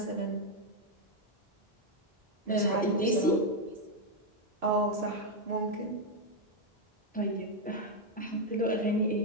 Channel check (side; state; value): both; normal; correlation 0.02